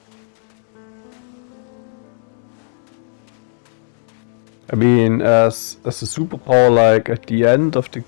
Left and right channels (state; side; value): silent; right; digital silence